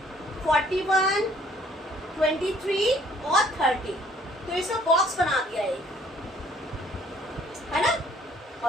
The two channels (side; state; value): both; normal; correlation 0.60